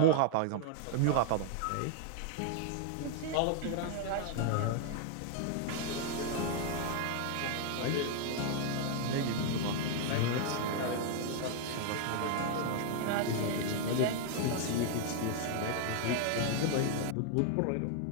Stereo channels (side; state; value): both; different; correlation 0.00